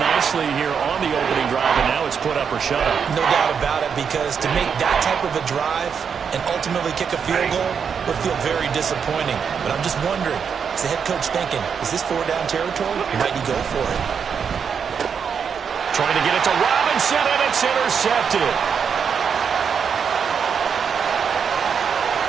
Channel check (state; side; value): quieter; left; 6.8 dB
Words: here on the opening drive, and now it's put up or shut up. No doubt about it, because to make that type of a drive and ultimately kick a field goal would feel very disappointing. But I'm just wondering, is the head coach thinking, is this 4-down territory? Might he go for it? Trying to get it to Robinson, and it's intercepted.